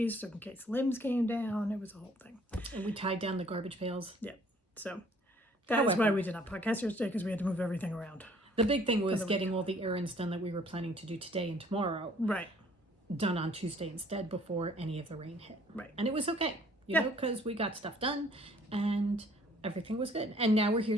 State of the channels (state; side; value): normal; both; correlation 0.58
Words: so in case limbs came down. It was a whole thing. And we tied down the garbage pails. Yeah. So that's why we did not podcast yesterday, because we had to move everything around. The big thing was getting all the errands done that we were planning to do today and tomorrow. Right. Done on Tuesday instead before any of the rain hit. Right. And it was okay, because we got stuff done and everything was good. And now we're